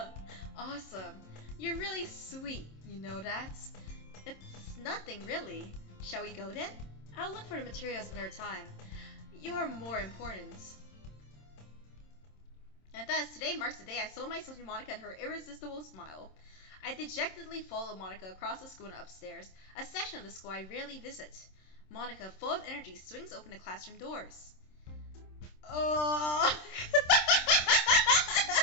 Awesome. You're really sweet, you know that? It's nothing, really. Shall we go then? I'll look for the materials another time. You're more important. And thus, today marks the day I sold myself to Monica and her irresistible smile. I dejectedly followed Monica across the school and upstairs, a section of the school I rarely visit. Monica, full of energy, swings open the classroom doors. Oh!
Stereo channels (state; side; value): late; right; 26 ms